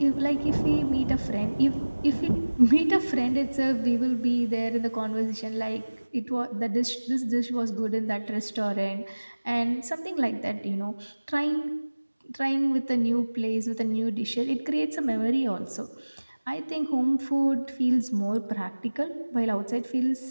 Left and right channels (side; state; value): both; inverted; correlation -1.00